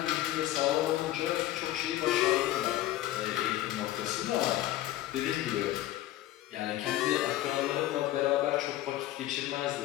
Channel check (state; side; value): quieter; right; 14.6 dB